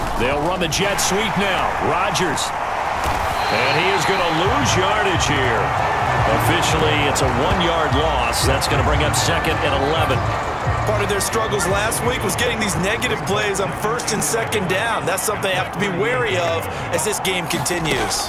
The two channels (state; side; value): identical; both; correlation 1.00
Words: They'll run the jet sweep now. Rodgers. And he is going to lose yardage here. Officially, it's a 1-yard loss. That's going to bring up 2nd and 11. Part of their struggles last week was getting these negative plays on 1st and 2nd down. That's something they have to be wary of as this game continues.